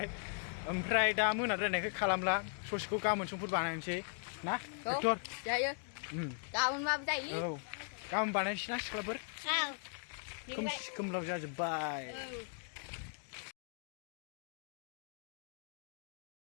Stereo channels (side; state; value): right; silent; 52 dB below the other